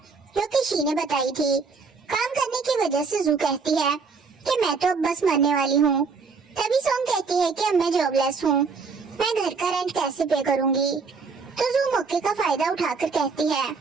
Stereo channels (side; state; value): left; quieter; 4.9 dB